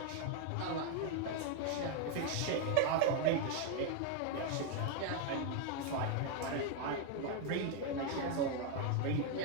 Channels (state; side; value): different; both; correlation 0.01